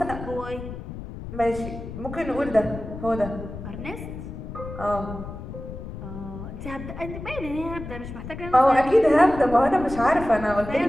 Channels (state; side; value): noise; left; rumble, 10 dB below the sound